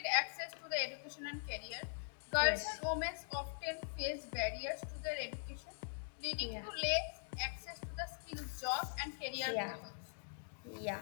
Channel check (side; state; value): right; silent; digital silence